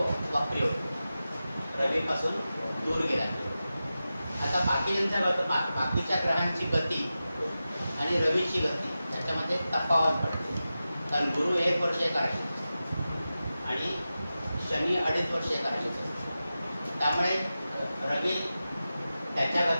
वक्री होतो, रवीपासून दूर गेला. आता बाकीच्या ग्रहांची गती आणि रवीची गती त्याच्यामध्ये तफावत पडते. कारण गुरु 1 वर्ष एका राशीत आणि शनी 2.5 वर्ष एका राशीत असतो. त्यामुळे रवी त्याच्या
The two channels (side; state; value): both; inverted; correlation -0.93